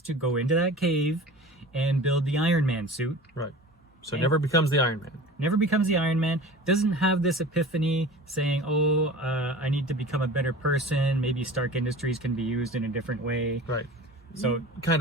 to go into that cave and build the Iron Man suit. Right. So never becomes the Iron Man. Never becomes the Iron Man. Doesn't have this epiphany saying, I need to become a better person. Maybe Stark Industries can be used in a different way. Right. So kind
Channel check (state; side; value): normal; both; correlation 0.38